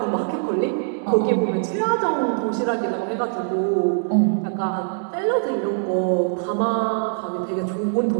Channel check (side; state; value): left; silent; 61 dB below the other